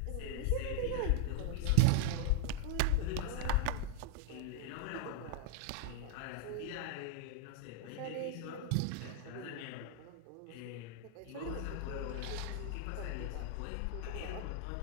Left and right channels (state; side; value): different; both; correlation 0.00